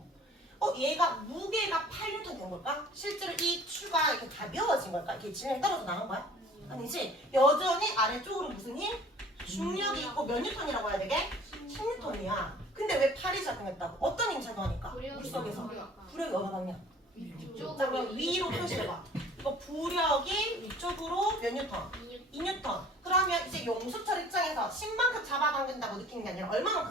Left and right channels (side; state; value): both; normal; correlation 0.50